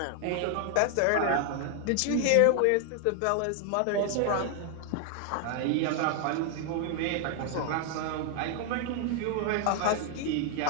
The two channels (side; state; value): both; different; correlation 0.00